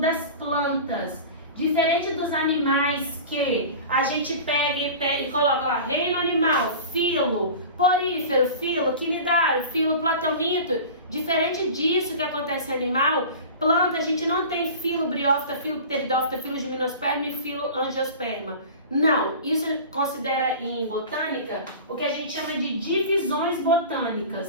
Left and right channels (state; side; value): inverted; both; correlation -0.36